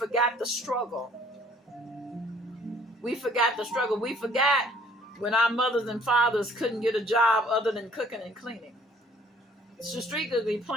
the struggle. We forgot the struggle. We forgot when our mothers and fathers couldn't get a job other than cooking and cleaning. It's strategically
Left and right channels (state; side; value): normal; both; correlation 0.58